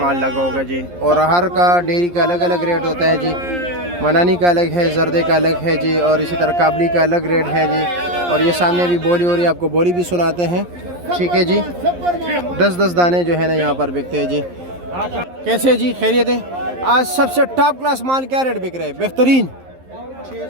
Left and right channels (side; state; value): left; late; 11 ms